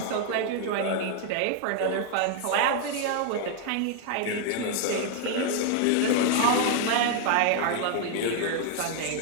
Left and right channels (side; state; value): both; different; correlation 0.00